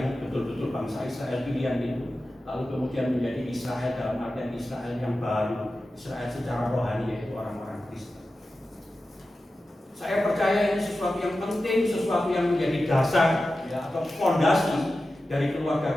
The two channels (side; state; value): both; normal; correlation 0.93